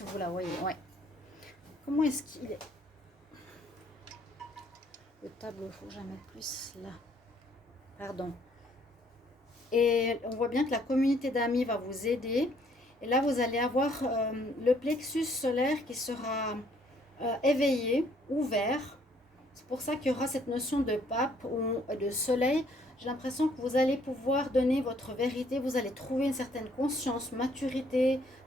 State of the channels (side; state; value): both; normal; correlation 0.64